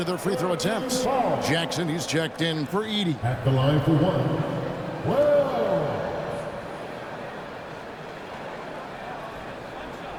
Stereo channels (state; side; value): identical; both; correlation 1.00